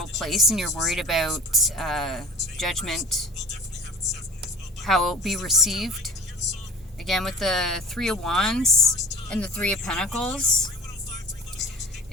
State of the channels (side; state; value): both; normal; correlation 0.42